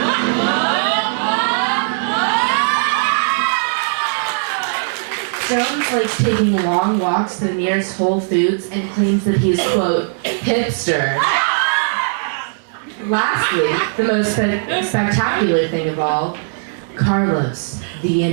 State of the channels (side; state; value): left; silent; digital silence